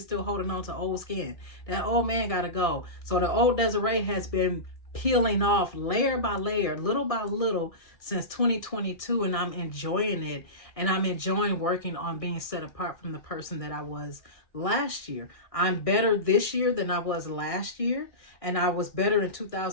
holding on to old skin. That old man got to go. So the old Desiree has been peeling off layer by layer, little by little, since 2022, and I'm enjoying it. And I'm enjoying working on being set apart from the person that I was last year. I'm better this year than I was last year, and I was better in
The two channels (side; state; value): right; late; 1.6 ms